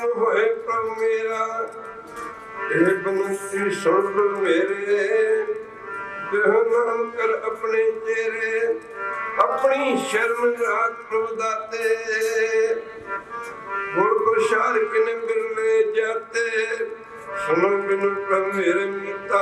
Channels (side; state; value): both; identical; correlation 1.00